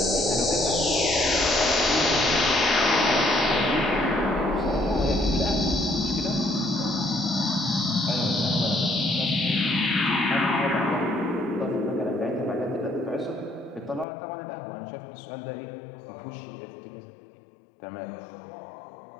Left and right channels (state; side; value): drops out; right; at 14.1 s